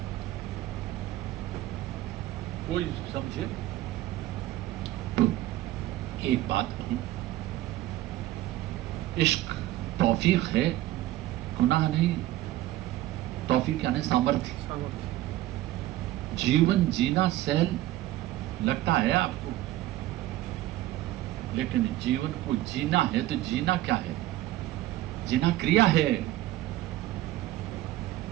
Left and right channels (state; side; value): quieter; left; 15.5 dB